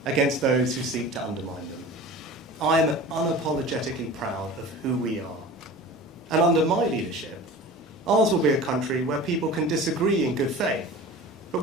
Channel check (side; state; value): both; normal; correlation 0.37